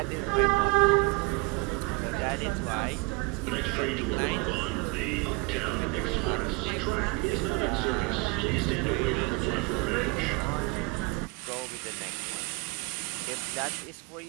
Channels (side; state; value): left; quieter; 27.3 dB